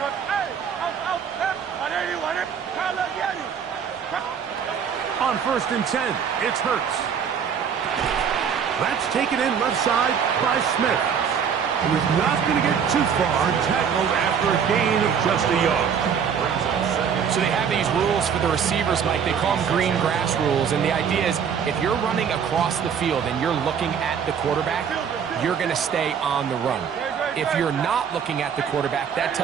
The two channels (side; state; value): left; quieter; 7.4 dB